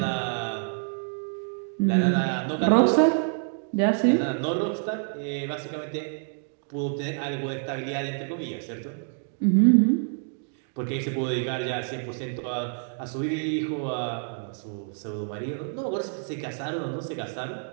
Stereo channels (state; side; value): silent; left; 60 dB below the other